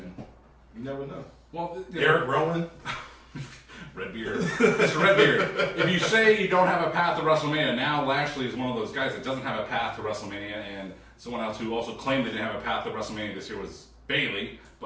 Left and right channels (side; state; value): both; identical; correlation 1.00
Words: you never know. Well, Eric Rowan, Redbeard, Mr. Redbeard. If you say you don't have a path to WrestleMania, now Lashley is one of those guys that doesn't have a path to WrestleMania, and someone else who also claimed they didn't have a path to WrestleMania this year was Bayley.